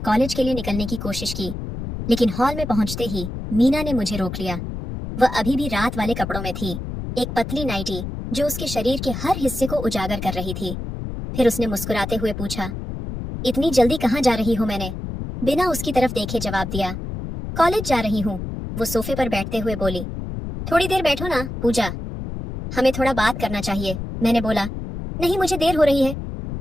कॉलेज के लिए निकलने की कोशिश की, लेकिन हॉल में पहुंचते ही मीना ने मुझे रोक लिया। वह अभी भी रात वाले कपड़ों में थी, एक पतली नाइटी जो उसके शरीर के हर हिस्से को उजागर कर रही थी। फिर उसने मुस्कुराते हुए पूछा, इतनी जल्दी कहाँ जा रही हो? मैंने बिना उसकी तरफ देखे जवाब दिया, कॉलेज जा रही हूँ। वो सोफे पर बैठते हुए बोली, थोड़ी देर बैठो ना पूजा, हमें थोड़ा बात करना चाहिए। मैंने बोला, नहीं, मुझे देर हो रही है,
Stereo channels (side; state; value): left; noise; rumble, 6 dB below the sound